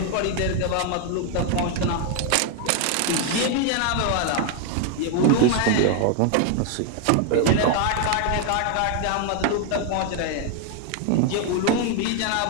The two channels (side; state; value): both; different; correlation 0.01